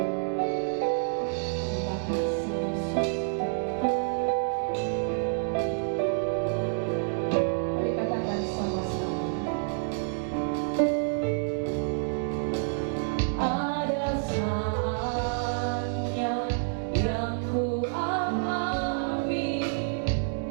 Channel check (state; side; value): silent; left; digital silence